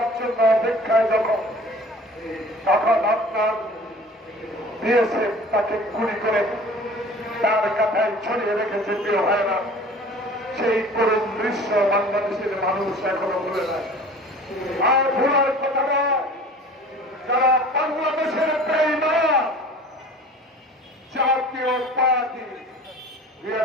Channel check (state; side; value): normal; both; correlation 0.44